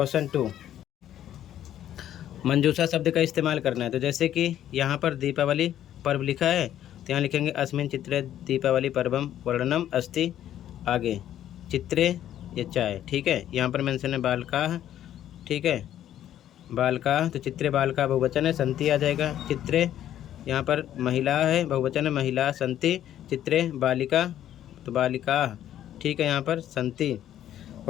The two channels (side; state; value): right; quieter; 11.4 dB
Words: 2, मंजूषा शब्द का इस्तेमाल करना है। तो जैसे कि यहाँ पर दीपावली पर्व लिखा है, तो यहाँ लिखेंगे अस्मिन चित्रे दीपावली पर्वम वर्णनम अस्ति। आगे, चित्रे, ये चाय। ठीक है, यहाँ पर मेंशन है बालकाः। ठीक है, बालकाः, तो चित्रे बालका बहुवचन है, संति आ जाएगा। चित्रे, यहाँ पर महिला है, बहुवचन है, महिला संति। चित्रे बालिका, तो बालिकाः। ठीक है, यहाँ पर संति